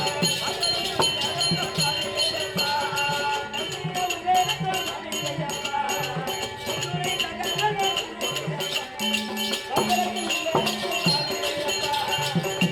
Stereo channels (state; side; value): identical; both; correlation 1.00